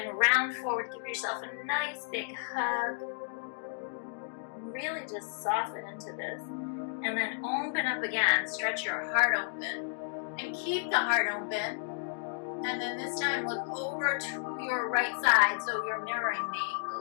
round forward, give yourself a nice big hug. Really just soften into this. And then open up again, stretch your heart open. And keep the heart open. And then this time look over to your right side, so you're mirroring me.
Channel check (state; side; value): silent; right; digital silence